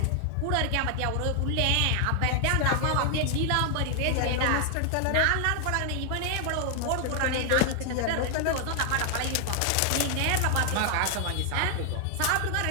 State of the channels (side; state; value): both; different; correlation 0.00